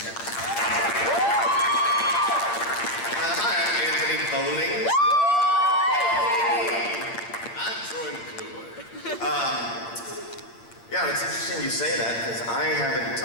Hi, I'm Anthony Bowling. I'm Troy McClure. Yeah, it's interesting you say that, because I haven't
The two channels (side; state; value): right; late; 8.7 ms